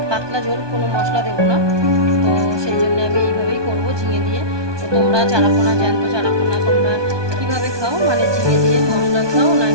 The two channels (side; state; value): left; late; 1.2 ms